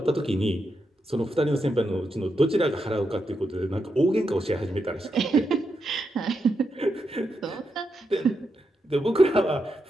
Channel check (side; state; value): both; normal; correlation 0.84